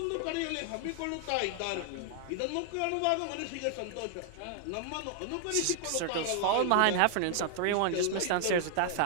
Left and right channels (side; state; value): both; different; correlation 0.00